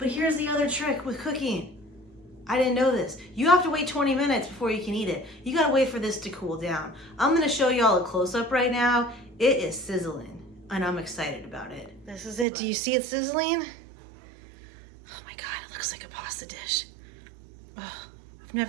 here's the other trick with cooking. I didn't know this. You have to wait 20 minutes before you can eat it. You gotta wait for this to cool down. I'm gonna show y'all a close-up right now. It is sizzling, and I'm excited about it. This is it. Do you see it sizzling? Oh my God, it looks like a pasta dish. Oh, I've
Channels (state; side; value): drops out; left; at 12.5 s